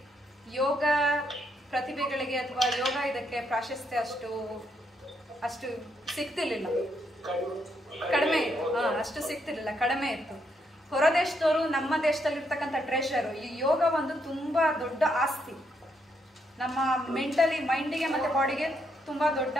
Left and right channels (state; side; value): normal; both; correlation 0.77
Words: ಯೋಗ ಪ್ರತಿಭೆಗಳಿಗೆ ಅಥವಾ ಯೋಗ ಇದಕ್ಕೆ ಪ್ರಾಶಸ್ತ್ಯ ಅಷ್ಟು ಸಿಗ್ತಿರ್ಲಿಲ್ಲ, ಕಡಿಮೆ ಇತ್ತು. ಅಷ್ಟು ಸಿಗ್ತಿರ್ಲಿಲ್ಲ, ಕಡಿಮೆ ಇತ್ತು. ಹೊರ ದೇಶದವರು ನಮ್ಮ ದೇಶದಲ್ಲಿರ್ತಕ್ಕಂಥ ಟ್ರೆಷರು. ಈ ಯೋಗ ಒಂದು ತುಂಬಾ ದೊಡ್ಡ ಆಸ್ತಿ, ನಮ್ಮ ಮೆಂಟಲಿ ಮೈಂಡಿಗೆ ಮತ್ತೆ ಬಾಡಿಗೆ ತುಂಬಾ ದೊಡ್ಡ